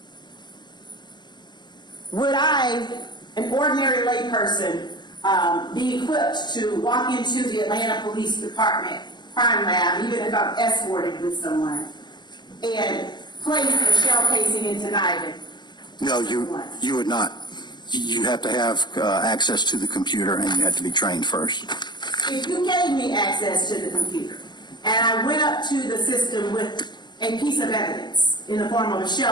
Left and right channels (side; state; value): right; late; 0.21 ms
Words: Would I, an ordinary layperson, be equipped to walk into the Atlanta Police Department crime lab, even if I'm escorted with someone, and place a shell casing into NIDIN? No, you would not. You have to have access to the computer, and you have to be trained first. If you gave me access to the computer, and I went up to the system with a piece of evidence in the form of a